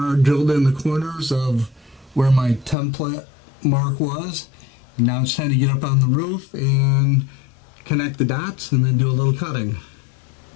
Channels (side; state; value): right; drops out; at 2.8 s